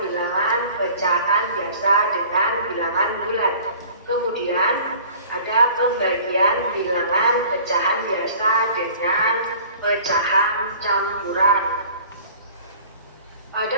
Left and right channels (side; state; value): both; inverted; correlation -0.47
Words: bilangan pecahan biasa dengan bilangan bulat. Kemudian ada pembagian bilangan pecahan biasa dengan pecahan campuran.